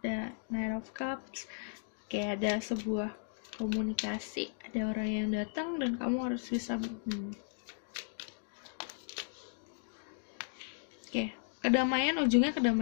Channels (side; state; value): right; silent; digital silence